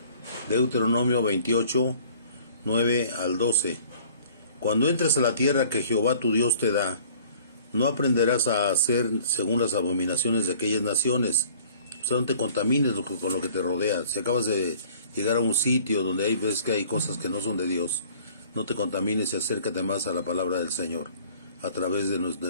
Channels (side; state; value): both; inverted; correlation -0.52